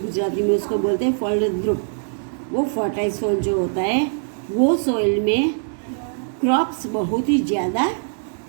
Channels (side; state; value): left; silent; digital silence